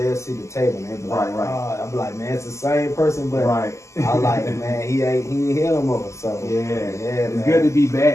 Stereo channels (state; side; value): late; right; 0.14 ms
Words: they'll see the table, man. Like, I'll be like, man, it's the same person, but I like, man, he ain't here no more. So it's man. Good to be